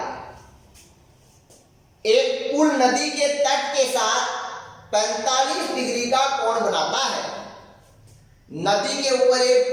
एक पुल नदी के तट के साथ 45 डिग्री का कोण बनाता है। नदी के ऊपर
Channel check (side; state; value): both; identical; correlation 1.00